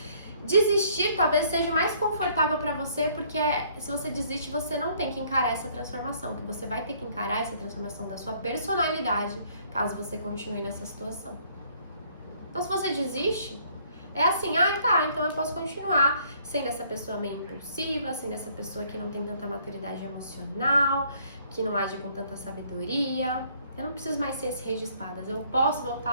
Desistir talvez seja mais confortável pra você, porque se você desiste, você não tem que encarar essa transformação, que você vai ter que encarar essa transformação da sua personalidade, caso você continue nessa situação. Então, se você desiste, é assim, tá, então eu posso continuar sendo essa pessoa meio impulsiva, sendo essa pessoa que não tem tanta maturidade emocional, que não age com tanta sabedoria. Eu não preciso mais ser esse rei de espadas. Eu posso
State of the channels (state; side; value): inverted; both; correlation -0.63